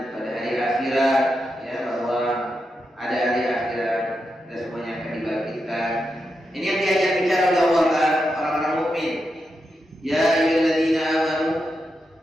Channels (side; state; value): both; normal; correlation 0.87